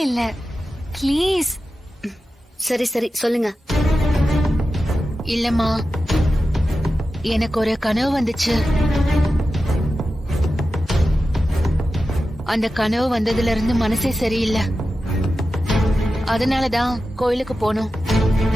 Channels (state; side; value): normal; both; correlation 0.92